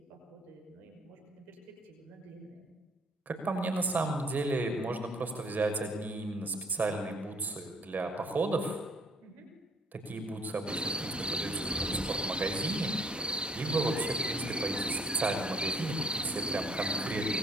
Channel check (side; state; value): both; normal; correlation 0.61